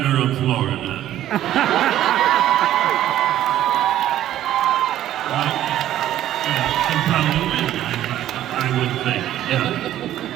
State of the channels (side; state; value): left; quieter; 12.5 dB